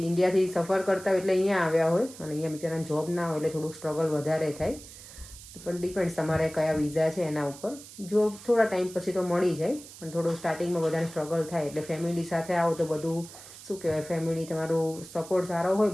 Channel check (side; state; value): right; noise; hiss, 17 dB below the sound